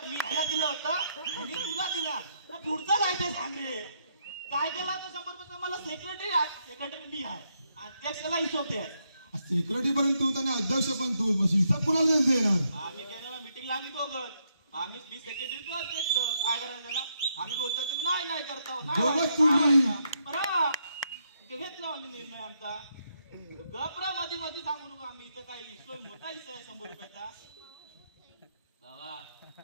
मी ह्याला दिलं होतं ह्यानी तुला दिला पुढचं काय ते सांग रे काय केला तर 100 रुपयाचा मला सेक्रेटरी मी आहे अध्यक्षाला हिशोब द्याय सेक्रेटरी पर्यंत तू आणि अध्यक्ष पण तू हिसाब कुणाला देणार आम्ही गेलेला मिटिंगला आम्ही दोघं आम्ही मी सेक्रेटरी तू अध्यक्ष काय करायचं त्याला आम्ही बोलतो तुम्ही नाही करतो बरं घेतलं आम्ही निर्णय आमचा गपरा मध्ये सांगू नका आम्ही इथं काय हिस्सा मोठा हिस्सा आहे 100 रुपयाचा बाबा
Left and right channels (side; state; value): both; inverted; correlation -0.77